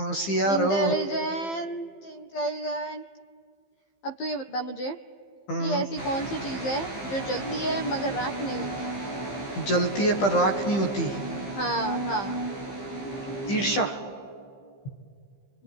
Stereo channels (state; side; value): late; right; 15 ms